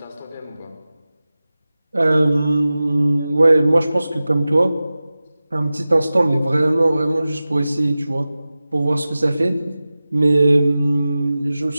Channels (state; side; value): inverted; both; correlation -0.96